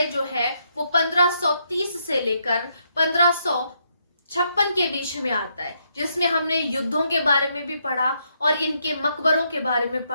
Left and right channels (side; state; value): both; inverted; correlation -0.77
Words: जो है वो 1530 से लेकर 1500 56 के बीच में आता है, जिसमें हमने युद्धों के बारे में भी पढ़ा और इनके मकबरों के बारे में